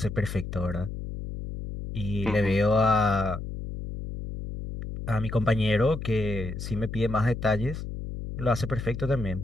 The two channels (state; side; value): noise; left; hum, 7 dB below the sound